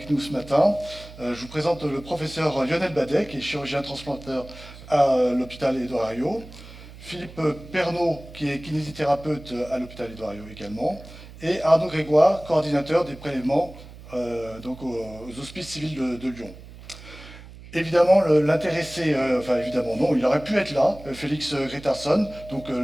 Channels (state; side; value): noise; right; hum, 17 dB below the sound